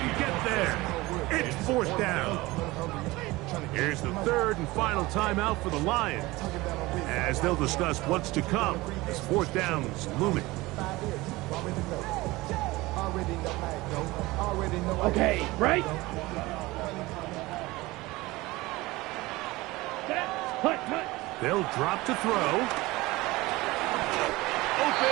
get there. It's 4th down. Here's the 3rd and final timeout for the Lions, as they'll discuss what's to come as 4th down is looming. Okay. Right. Set. Hut. Hut. They'll drop to throw.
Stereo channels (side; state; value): left; quieter; 20.5 dB